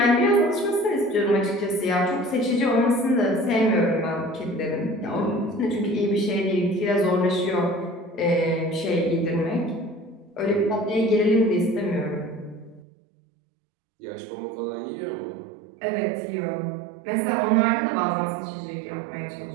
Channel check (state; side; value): drops out; left; at 12.8 s